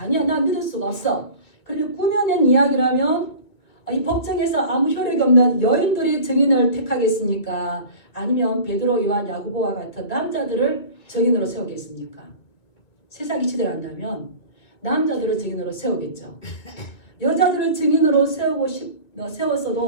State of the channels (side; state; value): right; late; 2.4 ms